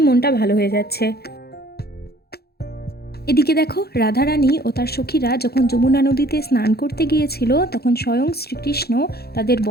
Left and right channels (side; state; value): right; late; 0.46 ms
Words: মনটা ভালো হয়ে যাচ্ছে। এদিকে দেখো রাধা রানী ও তার সখীরা যখন যমুনা নদীতে স্নান করতে গিয়েছিল, তখন স্বয়ং শ্রীকৃষ্ণ তাদের